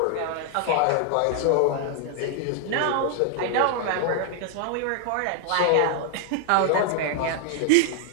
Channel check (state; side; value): different; both; correlation 0.00